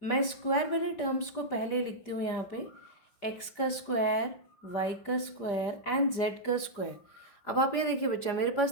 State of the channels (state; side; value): late; right; 5.0 ms